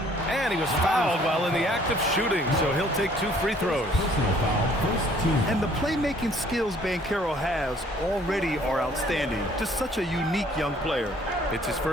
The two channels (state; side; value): normal; both; correlation 0.59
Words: And he was fouled while in the act of shooting, so he'll take 2 free throws. And the playmaking skills Banchero has already are outstanding. Just such a unique young player. It's his